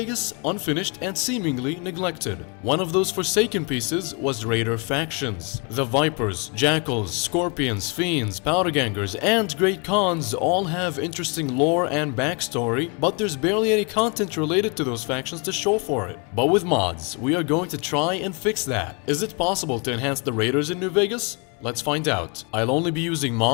unfinished and seemingly neglected. One of those forsaken pieces was Raider factions. The Vipers, Jackals, Scorpions, Fiends, Powdergangers, and Great Khans all have interesting lore and backstory, but there's barely any content related to those factions to show for it. But with mods, we are going to try and fix that. Is it possible to enhance the Raiders in New Vegas? Let's find out. I'll only be using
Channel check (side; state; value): right; quieter; 33.7 dB